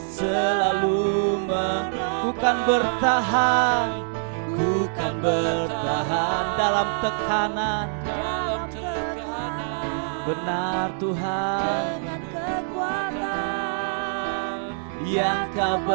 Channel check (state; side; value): silent; left; digital silence